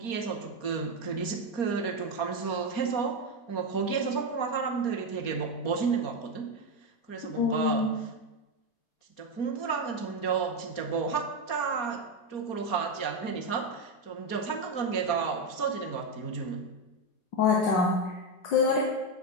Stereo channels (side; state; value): right; late; 4.3 ms